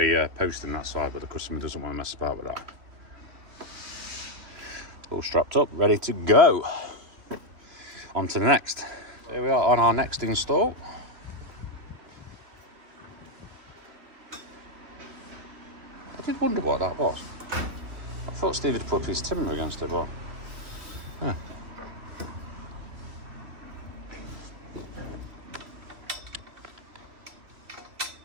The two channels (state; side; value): late; left; 3.1 ms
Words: post in that side, but the customer doesn't want to mess about with that. All strapped up, ready to go. On to the next. Here we are on our next install. I did wonder what that was. I thought Steve had put a piece of timber against it, but yeah.